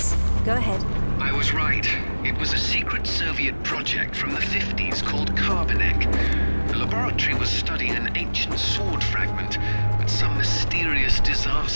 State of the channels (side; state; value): both; inverted; correlation -1.00